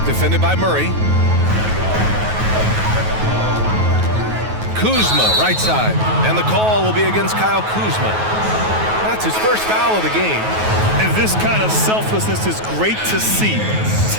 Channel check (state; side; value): late; left; 9.3 ms